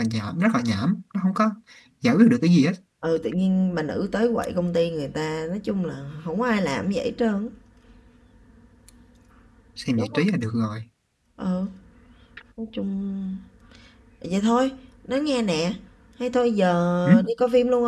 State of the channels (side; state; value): both; identical; correlation 1.00